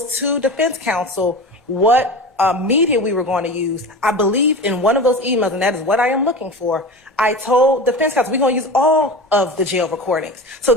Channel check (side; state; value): both; normal; correlation 0.31